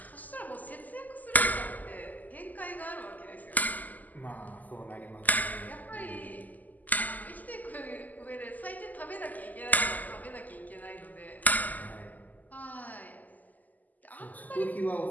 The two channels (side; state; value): right; late; 0.081 ms